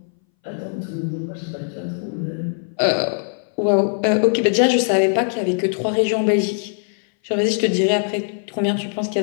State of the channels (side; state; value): right; silent; 62 dB below the other